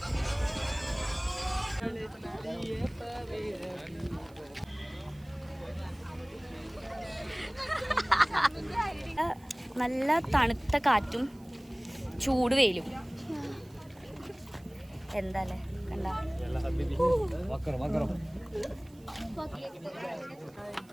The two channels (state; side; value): noise; right; hiss, 28 dB below the sound